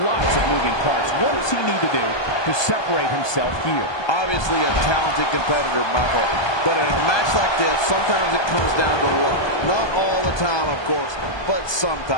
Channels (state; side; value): late; right; 1.2 ms